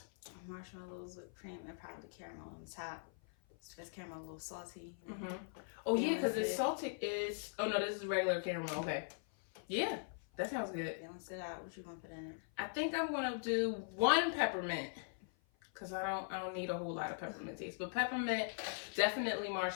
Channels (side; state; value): right; silent; 50 dB below the other